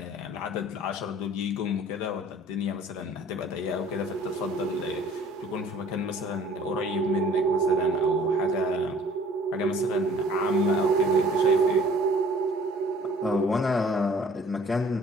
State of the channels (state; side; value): normal; both; correlation 0.52